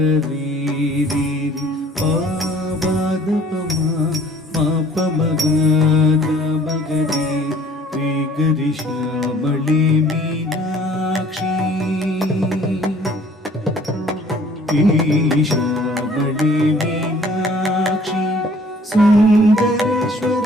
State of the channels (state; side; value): normal; both; correlation 0.55